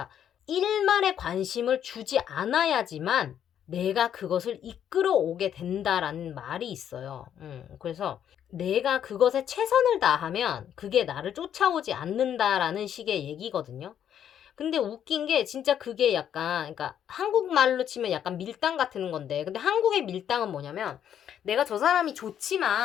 일말의 관심을 주지 않아야지만 내가 그것을 이끌어 오게 된다라는 말이 있어요. 그래서 내가 그것에 최선을 다하면 그게 나를 쫓아오지 않는다라는 식의 얘기거든요. 근데 웃긴 게 진짜 그게 약간, 그러니까 한국말로 치면 약간 밀당 같은 건데, 근데 한국의 밀당은 뭐냐면 내가 저 사람이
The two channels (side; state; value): right; quieter; 9.5 dB